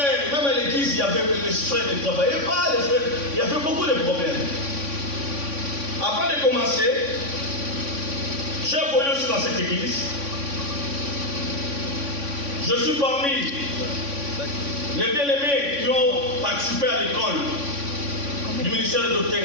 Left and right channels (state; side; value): late; left; 3.5 ms